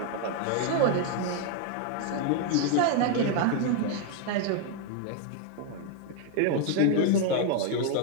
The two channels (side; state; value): both; different; correlation 0.01